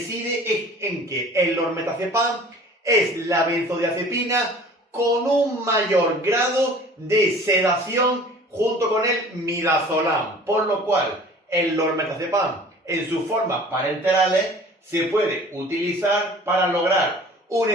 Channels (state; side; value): normal; both; correlation 0.46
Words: en que el lormetazepam es la benzodiazepina con un mayor grado de sedación junto con el midazolam, por lo cual el lormetazepam en sus formas parenterales se puede utilizar para lograr un